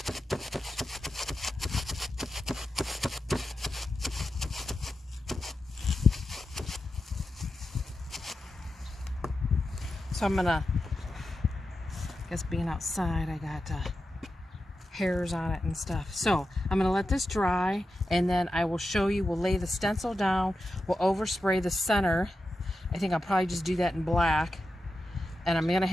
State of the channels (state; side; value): normal; both; correlation 0.90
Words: So I'm gonna, I guess being outside, I got hairs on it and stuff. So I'm gonna let this dry, and then I will show you. We'll lay the stencil down. We'll overspray the center. I think I'll probably just do that in black. And I'm gonna